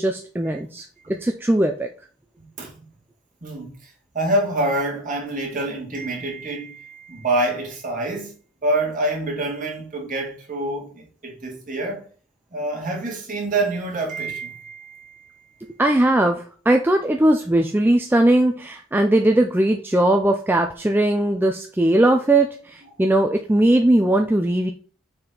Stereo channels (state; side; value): normal; both; correlation 0.69